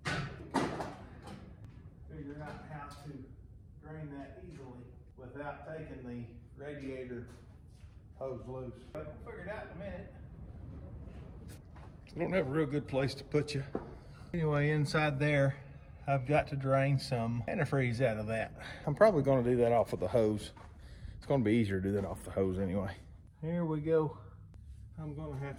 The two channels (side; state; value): both; identical; correlation 1.00